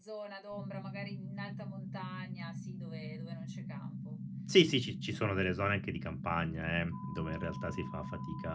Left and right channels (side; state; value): both; identical; correlation 1.00